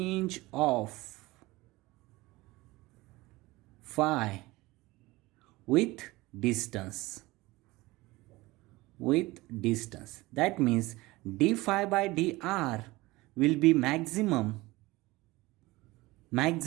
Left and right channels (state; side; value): quieter; left; 20.5 dB